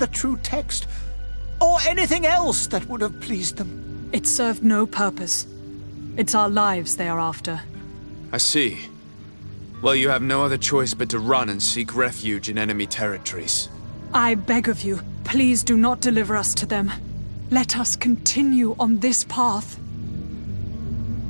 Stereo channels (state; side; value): inverted; both; correlation -1.00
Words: true text, or anything else that would have pleased them. It served no purpose. It's our lives they are after. I see. Well, you have no other choice but to run and seek refuge in enemy territories. I beg of you, please do not deliver us to them. Let us continue on this path.